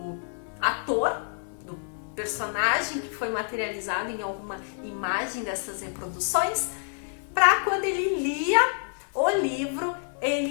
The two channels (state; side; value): silent; right; 60 dB below the other